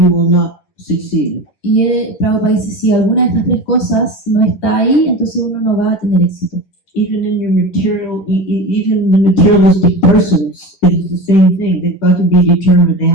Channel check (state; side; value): late; right; 10 ms